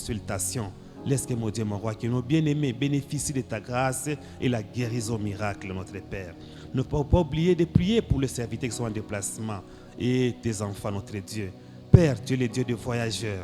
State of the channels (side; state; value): both; identical; correlation 1.00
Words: Laisse que, mon Dieu, mon roi, que nos bien-aimés bénéficient de ta grâce et la guérison miracle, notre Père. Ne pas oublier de prier pour les serviteurs qui sont en déplacement et tes enfants, notre Dieu. Père, tu es le Dieu des